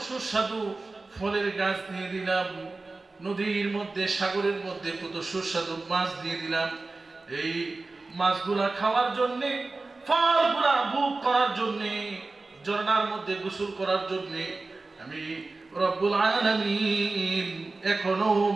সুস্বাদু ফলের গাছ দিয়ে দিলাম, নদীর মধ্যে সাগরের মধ্যে কত সুস্বাদু মাছ দিয়ে দিলাম। এই মাছগুলা খাওয়ার জন্য, ফলগুলা ভোগ করার জন্য, ঝর্ণার মধ্যে গোসল করার জন্য আমি রব্বুল আলামিন এখনো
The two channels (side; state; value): left; quieter; 3.5 dB